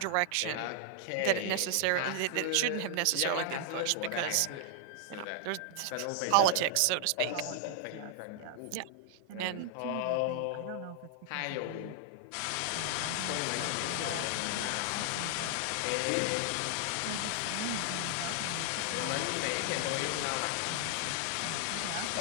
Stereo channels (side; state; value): both; different; correlation 0.00